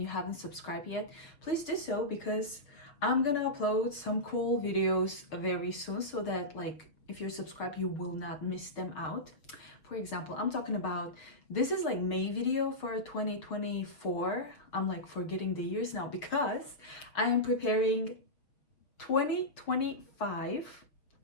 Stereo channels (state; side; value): late; right; 6.4 ms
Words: you haven't subscribed yet, please do so because I'm gonna upload some cool videos very soon so that like if you're subscribed you will not miss them out. For example, I'm talking about, this is like May video for 2024. I'm like forgetting the years now because I am preparing 2025